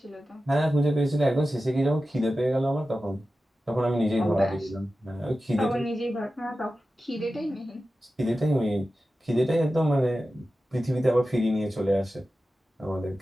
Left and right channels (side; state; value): both; normal; correlation 0.93